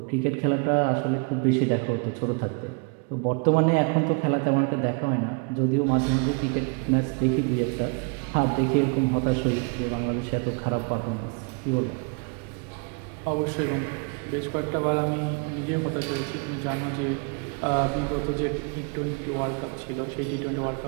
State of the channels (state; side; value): quieter; left; 35.4 dB